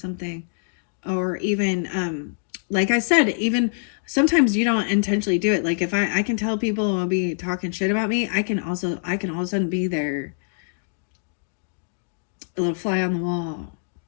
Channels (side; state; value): right; silent; digital silence